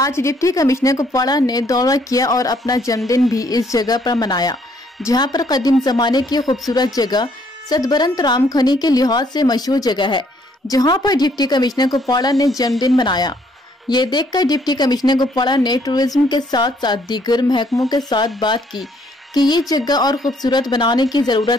डिप्टी कमिश्नर कुपवाड़ा ने दौरा किया और अपना जन्मदिन भी इस जगह पर मनाया, जहां पर कदीम जमाने की खूबसूरत जगह सतबरंत राम खनी के लिहाज से मशहूर जगह है, जहां पर डिप्टी कमिश्नर कुपवाड़ा ने जन्मदिन मनाया। ये देखकर डिप्टी कमिश्नर कुपवाड़ा ने टूरिज्म के साथ साथ दीगर महकमों के साथ बात की कि ये जगह और खूबसूरत बनाने की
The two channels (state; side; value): normal; both; correlation 0.67